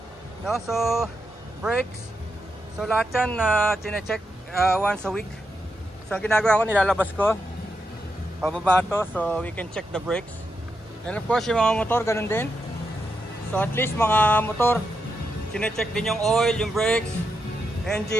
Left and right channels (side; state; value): both; normal; correlation 0.84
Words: no? So brakes, so lahat yan chinecheck once a week. So ang ginagawa ko, nilalabas ko pababa to, so we can check the brakes. And of course yung mga motor ganun din. So at least mga motor chinecheck din yung oil, yung brakes,